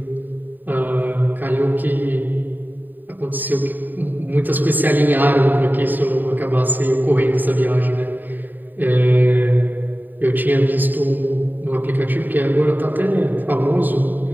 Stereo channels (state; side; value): late; left; 0.089 ms